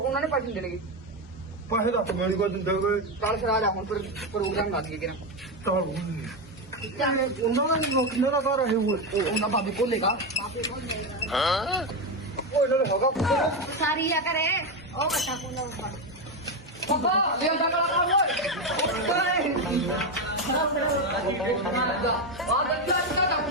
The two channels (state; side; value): normal; both; correlation 0.10